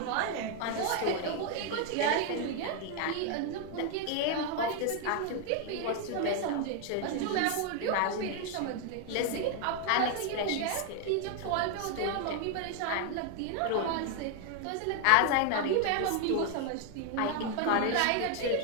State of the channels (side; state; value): both; different; correlation 0.00